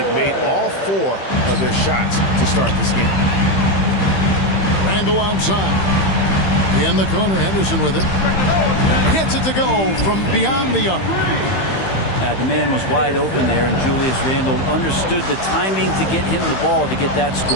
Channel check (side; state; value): right; late; 15 ms